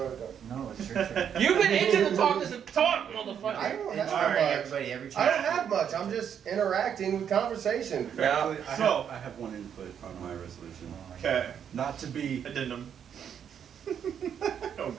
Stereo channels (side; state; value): left; quieter; 8.4 dB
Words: ahead. No, it's your turn. You've been itching to talk this talk, I motherfucker. don't It's have alright, much. everybody. Every I chance. don't have much. I'm just interacting with conversation. Yeah. Actually, So- I have one input on my resolution. Okay. Not to be Addendum. Oh